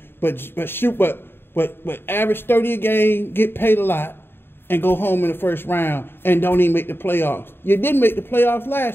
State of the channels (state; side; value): late; right; 0.11 ms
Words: but average 30 a game, get paid a lot, and go home in the first round and don't even make the playoffs. You didn't make the playoffs